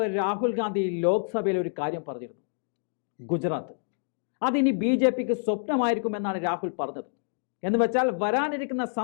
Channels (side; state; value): right; silent; digital silence